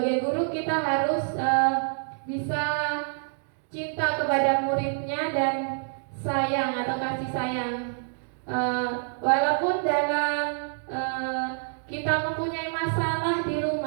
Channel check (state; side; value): silent; left; digital silence